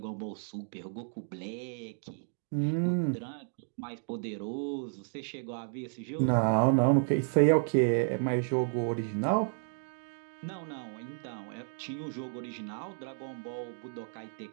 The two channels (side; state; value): left; silent; digital silence